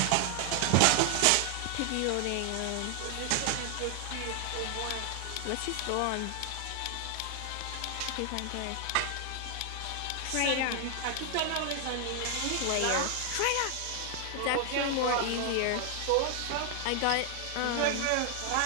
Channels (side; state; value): both; different; correlation 0.00